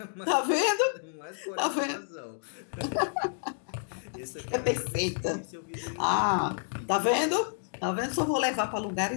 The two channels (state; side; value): silent; right; digital silence